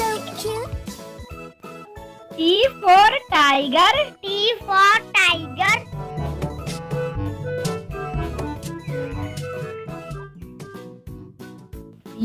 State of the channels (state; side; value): identical; both; correlation 1.00